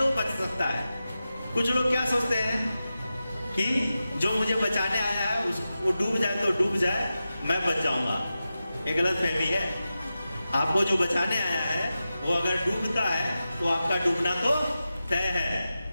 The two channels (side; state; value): both; inverted; correlation -0.93